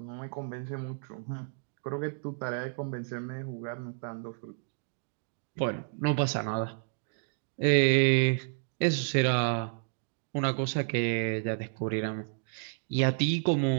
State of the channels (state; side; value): silent; left; digital silence